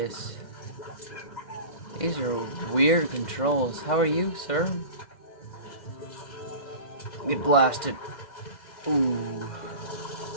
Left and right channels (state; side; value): late; right; 1.5 ms